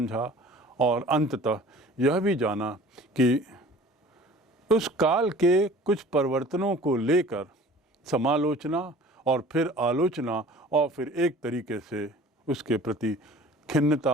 और अंततः यह भी जाना कि उस काल के कुछ परिवर्तनों को लेकर समालोचना और फिर आलोचना और फिर एक तरीके से उसके प्रति खिन्नता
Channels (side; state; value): both; normal; correlation 0.46